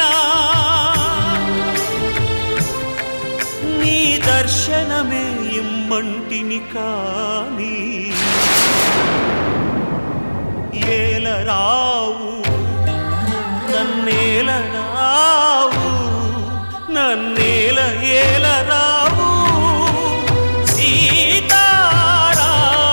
నీ దర్శనమే ఇమ్మంటిని కాని ఏలరావు నన్నేలరావు నన్నేల ఏలరావు సీతారామ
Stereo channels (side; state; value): both; inverted; correlation -1.00